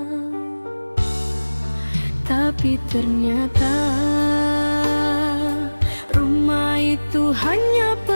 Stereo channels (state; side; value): inverted; both; correlation -1.00